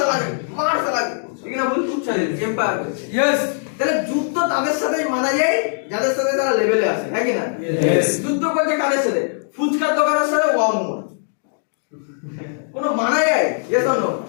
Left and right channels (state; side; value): silent; right; digital silence